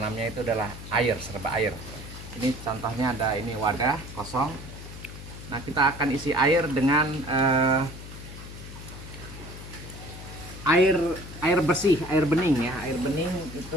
itu adalah air, serba air. Ini contohnya ada ini wadah kosong. Nah, kita akan isi air dengan air bersih, air bening ya. Air bening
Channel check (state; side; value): noise; left; hum, 13 dB below the sound